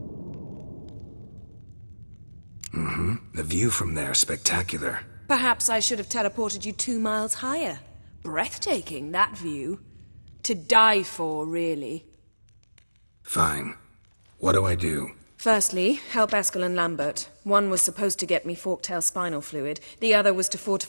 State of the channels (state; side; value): inverted; both; correlation -1.00